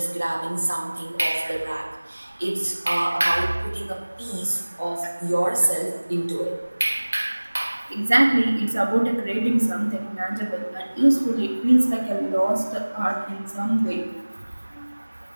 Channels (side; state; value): both; inverted; correlation -1.00